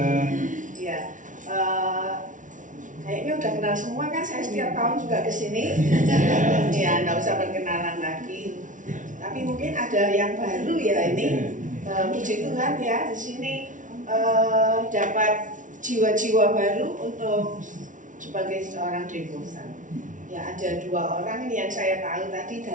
Ya, kayaknya udah kenal semua kan. Saya setiap tahun juga kesini. Ya, nggak usah perkenalan lagi. Tapi mungkin ada yang baru ya ini. Puji Tuhan ya, di sini dapat jiwa-jiwa baru untuk sebagai seorang devosan. Ya, ada 2 orang ini yang saya tahu tadi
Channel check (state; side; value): late; left; 0.37 ms